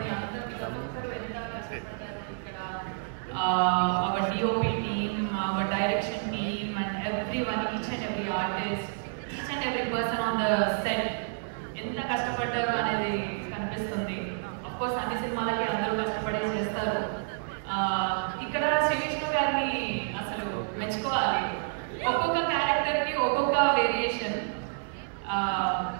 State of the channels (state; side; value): silent; left; digital silence